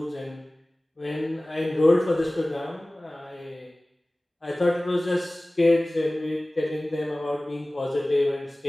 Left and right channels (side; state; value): both; normal; correlation 0.98